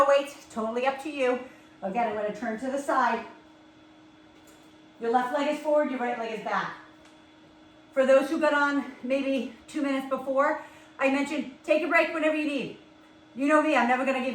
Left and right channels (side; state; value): both; identical; correlation 1.00